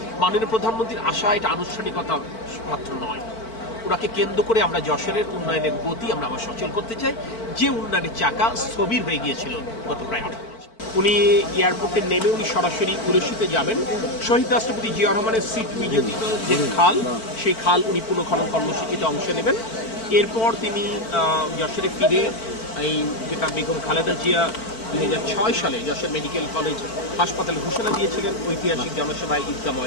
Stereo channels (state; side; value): late; right; 4.5 ms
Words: মাননীয় প্রধানমন্ত্রীর আশা এটা আনুষ্ঠানিকতা মাত্র নয়, ওনাকে কেন্দ্র করে আমরা যশোরের উন্নয়নের গতি আমরা আবার সচল করতে চাই, যে উন্নয়নের চাকা স্থবির হয়ে গিয়েছিল গত প্রায় 18 বছর। উনি এয়ারপোর্টে নেমে উনি সরাসরি উলসিতে যাবেন। শহীদ রাষ্ট্রপতি জিয়া রহমানের সিট বিজেপি যে খাল, সেই খাল উনি পুনঃখনন কর্মসূচিতে অংশ নেবেন। এরপর তিনি যশোরে ফিরে এই যেটা বেগম খালেদা জিয়া 2006 সালে যশোর মেডিকেল কলেজ হাসপাতালে ঘোষণা দিয়েছিলেন ঐতিহাসিক জনসভায় ঈদগাহ